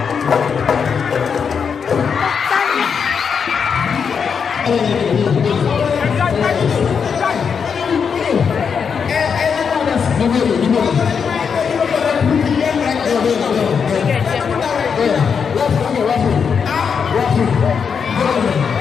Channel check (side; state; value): right; quieter; 6.4 dB